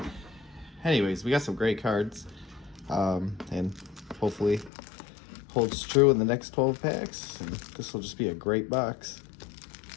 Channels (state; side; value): drops out; right; at 4.7 s